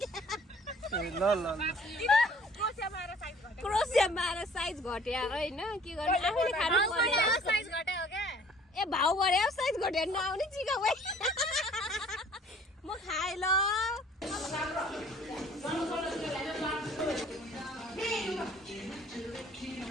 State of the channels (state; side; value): normal; both; correlation 0.54